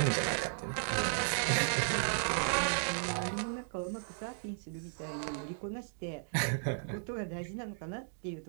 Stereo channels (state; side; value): silent; left; digital silence